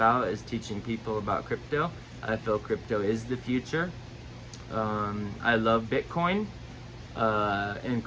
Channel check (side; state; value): both; identical; correlation 1.00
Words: is teaching people about crypto. I feel crypto is the future. I love Bitcoin and